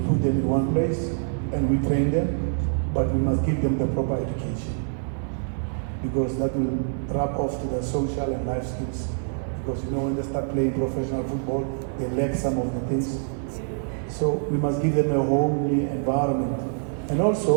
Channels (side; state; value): left; silent; digital silence